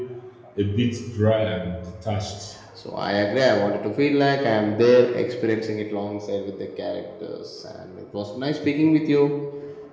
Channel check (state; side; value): identical; both; correlation 1.00